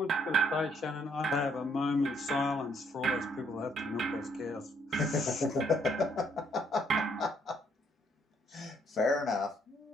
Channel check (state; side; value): normal; both; correlation 0.69